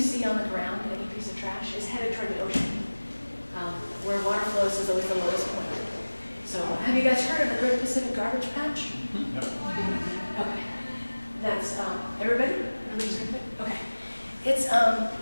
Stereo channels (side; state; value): both; inverted; correlation -1.00